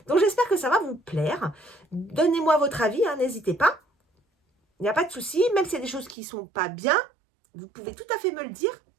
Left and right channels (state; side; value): drops out; left; at 6.2 s